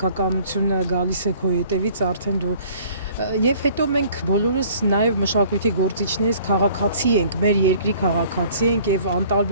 գալիս է քո հետևից, արդեն դու եւ հետո մենք բոլորս նաև մշակույթի գործիչներից քաղաքացի ենք, մեր երկրի քաղաքացի ենք եւ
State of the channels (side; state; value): both; inverted; correlation -0.54